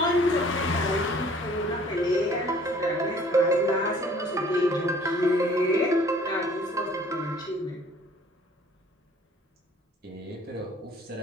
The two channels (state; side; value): normal; both; correlation 0.54